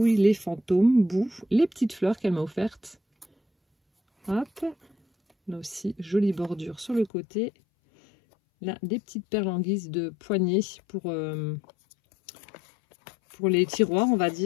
les fantômes, boue, les petites fleurs qu'elle m'a offertes. Hop. Là aussi, jolie bordure sur le côté. Là, des petites perles en guise de poignée pour les tiroirs, on va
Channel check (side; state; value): right; drops out; at 7.1 s